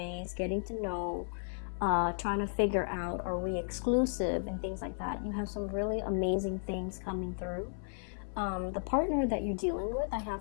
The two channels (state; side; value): silent; right; 55 dB below the other